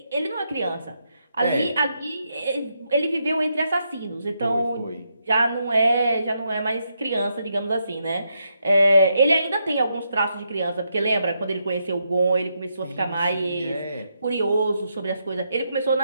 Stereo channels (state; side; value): inverted; both; correlation -0.81